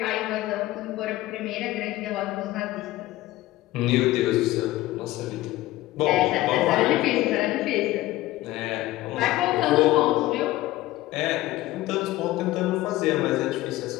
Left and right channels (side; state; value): right; quieter; 16.9 dB